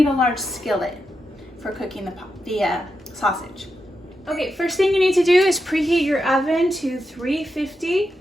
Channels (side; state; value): both; normal; correlation 0.87